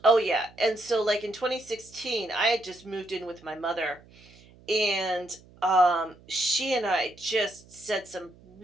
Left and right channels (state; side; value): noise; right; hum, 25 dB below the sound